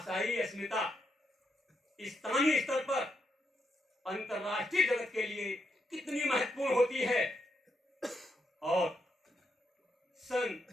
अस्मिता स्थानीय स्तर पर अंतरराष्ट्रीय जगत के लिए कितनी महत्वपूर्ण होती है। और सन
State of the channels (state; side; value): normal; both; correlation 0.81